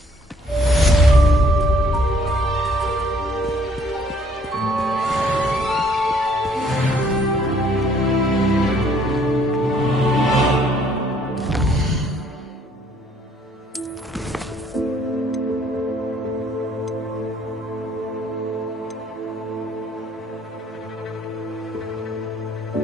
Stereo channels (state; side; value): normal; both; correlation 0.63